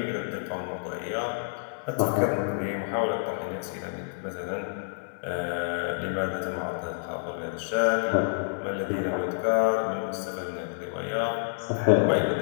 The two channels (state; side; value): silent; right; digital silence